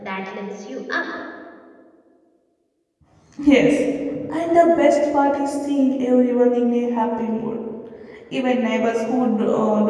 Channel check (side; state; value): both; identical; correlation 1.00